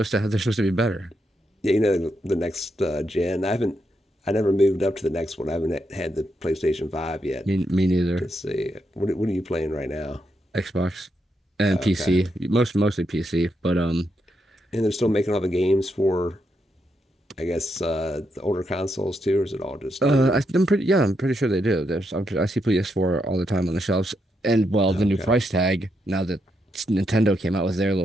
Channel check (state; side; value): normal; both; correlation 0.81